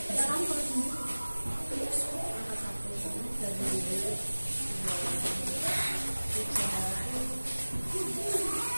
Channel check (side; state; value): both; inverted; correlation -1.00